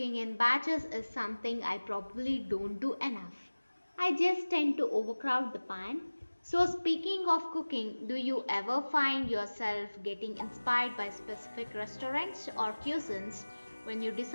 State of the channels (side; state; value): both; inverted; correlation -1.00